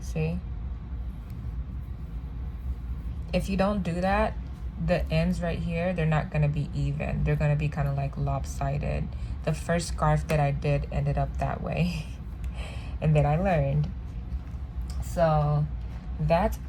If you don't do that, the ends right here, they're not gonna be even. They're gonna be kind of like lopsided. The first scarf that I did ended up that way. And then I learned. So that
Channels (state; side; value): identical; both; correlation 1.00